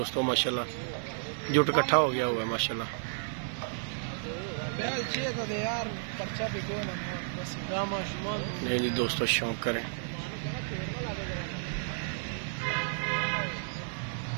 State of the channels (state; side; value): silent; left; 56 dB below the other